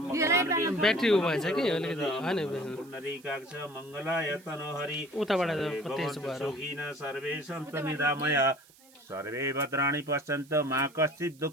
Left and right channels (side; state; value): right; noise; hiss, 26 dB below the sound